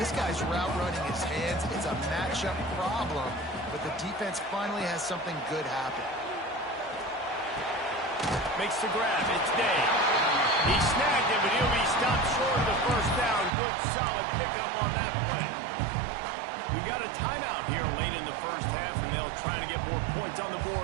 guy's route running his hands. It's a matchup problem, but the defense finally has something good happen. Makes the grab. It's Day. He snagged it, but he'll be stopped short of the first down. Good, solid pickup on that play. We got a timeout here late in the first half, and they'll try to get more points on the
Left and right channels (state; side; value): drops out; left; at 13.5 s